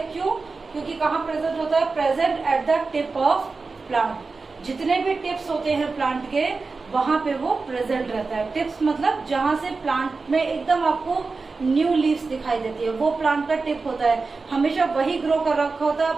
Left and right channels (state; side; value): quieter; left; 4.1 dB